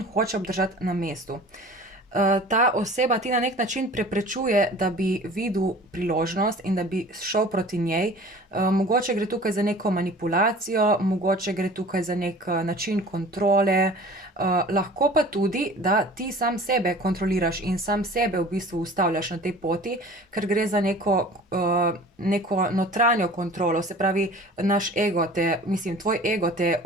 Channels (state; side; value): normal; both; correlation 0.44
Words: hoče obdržati na mestu. Ta oseba ti na nek način preprečuje, da bi videl priložnost in da bi šel proti njej. Mogoče gre tukaj za neko manipulacijo, mogoče gre tukaj za nek način kontrole, lahko pa tudi, da ti sam sebe kontroliraš in sam sebe v bistvu ustavljaš na tej poti, ker gre za neko notranjo kontrolo, se pravi, naš ego tvoj ego te